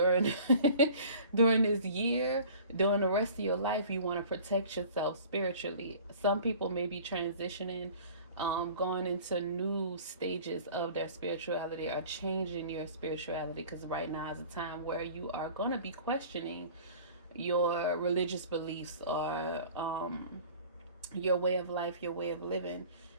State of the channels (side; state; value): both; inverted; correlation -0.46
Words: during this year, during the rest of your life, you want to protect yourself spiritually. Some people may be transitioning, going into new stages of their spirituality, or changing your spirituality, because right now is a time where you are going to be questioning your religious beliefs, or your way of life, your way of living.